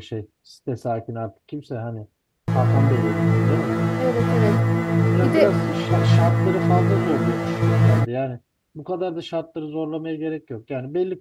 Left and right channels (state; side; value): identical; both; correlation 1.00